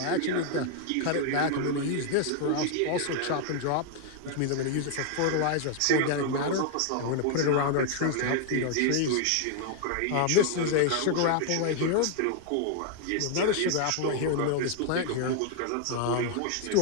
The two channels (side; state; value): both; different; correlation 0.00